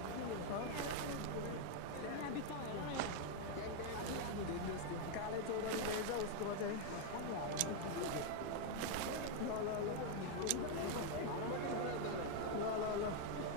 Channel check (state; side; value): different; both; correlation 0.00